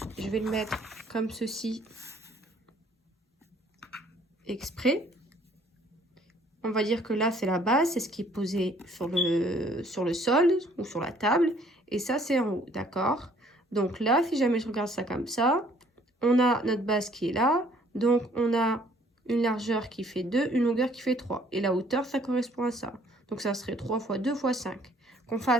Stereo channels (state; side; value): normal; both; correlation 0.60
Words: je vais le mettre comme ceci, exprès. On va dire que là, c'est la base, c'est ce qui est posé sur le sol ou sur la table. Et ça, c'est en haut, d'accord? Donc là, si jamais je regarde ça comme ça, on a notre base qui est là. Donc, on a une largeur qui fait 2, une longueur qui fait 3. Et la hauteur, ça correspond à ça. Donc, ça serait 3 fois 2 fois 5. Qu'on